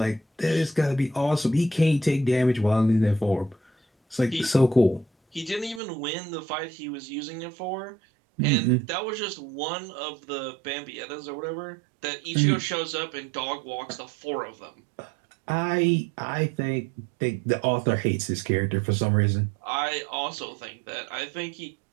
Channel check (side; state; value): left; drops out; at 5.8 s